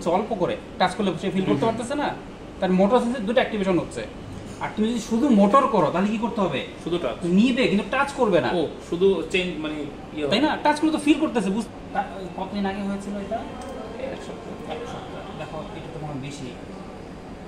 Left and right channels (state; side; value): identical; both; correlation 1.00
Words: অল্প করে টাচ করলে সে ফিল করতে পারতেছে না, তার মোটর সেন্সর দুটো অ্যাক্টিভেশন হচ্ছে। আর তুমি যদি শুধু মোটর করো তাহলে কি করতে হবে, শুধু টাচ নিবে কিন্তু টাচ করবে না। ও শুধু চেঞ্জ মানে তাই না, টাচ করলে তো ফিল করতেছে। কতদিন আগে হয়েছিল এটা? 1 সপ্তাহ। দেখো এটা তো মনে বেশি